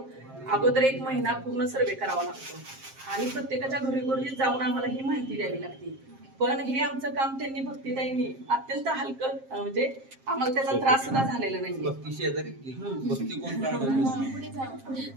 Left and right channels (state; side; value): late; left; 7.5 ms